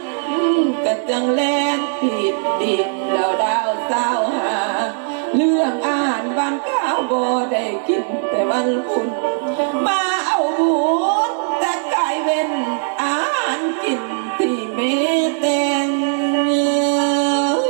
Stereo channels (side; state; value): left; silent; 62 dB below the other